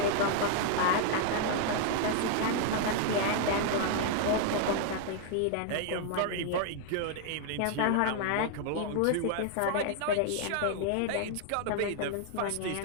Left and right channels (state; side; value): different; both; correlation 0.00